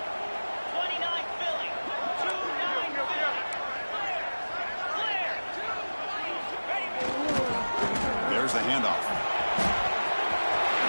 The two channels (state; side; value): inverted; both; correlation -1.00